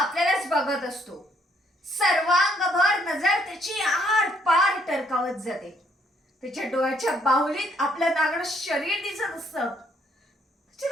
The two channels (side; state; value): both; normal; correlation 0.69